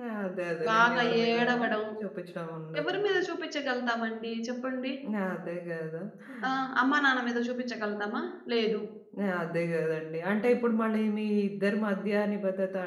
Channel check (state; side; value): identical; both; correlation 1.00